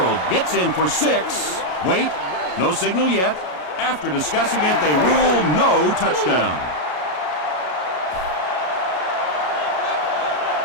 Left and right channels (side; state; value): right; late; 33 ms